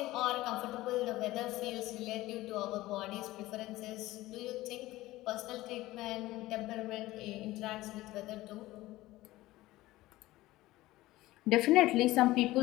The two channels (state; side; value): quieter; right; 17.5 dB